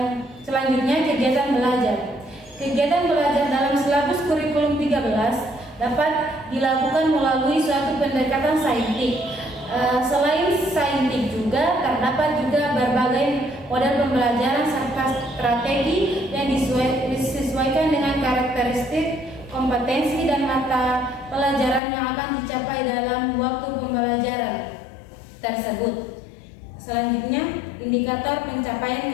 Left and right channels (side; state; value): right; drops out; at 21.8 s